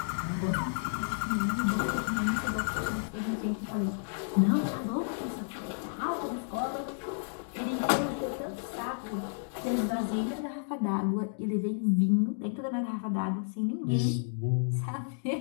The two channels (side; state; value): right; silent; digital silence